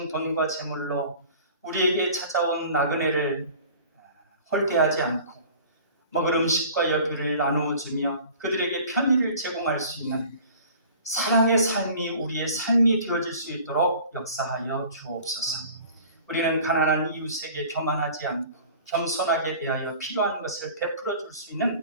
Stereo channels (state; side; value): inverted; both; correlation -0.45